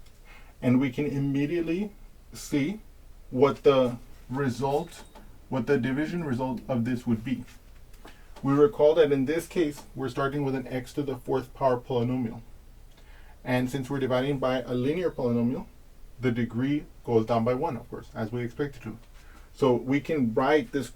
and we can immediately see what the division result of this would be. We recall that in this case, we're starting with an x to the fourth power polynomial. And since we're dividing by a linear polynomial, the degree goes down by 1, of course, as we expect it to. So we can write this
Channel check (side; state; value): both; identical; correlation 1.00